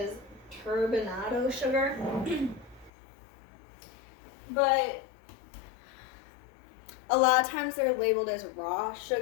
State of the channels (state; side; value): drops out; right; at 2.9 s